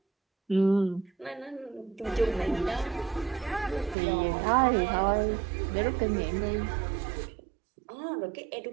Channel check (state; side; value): drops out; left; at 4.0 s